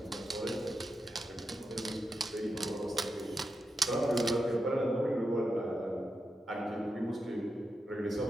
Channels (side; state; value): both; normal; correlation 0.87